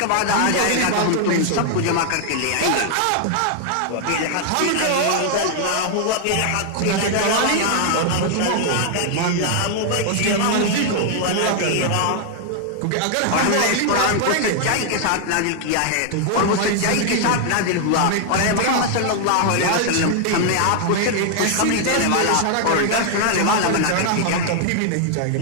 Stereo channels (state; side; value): different; both; correlation 0.00